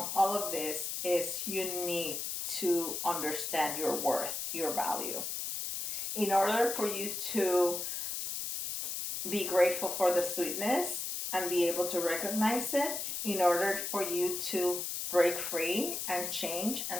all of this is you need to understand your worth, your value. In order for you to be grateful for the sweetness and be able to recognize it, in order for you to break free and change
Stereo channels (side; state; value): left; noise; hiss, 3 dB below the sound